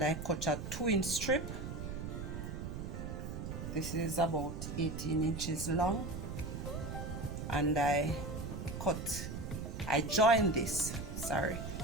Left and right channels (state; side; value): noise; right; rumble, 6 dB below the sound